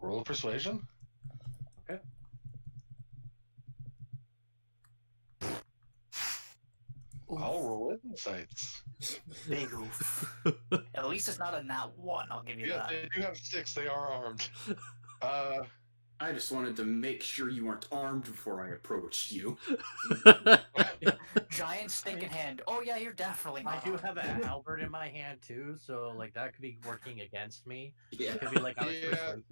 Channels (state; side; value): inverted; both; correlation -1.00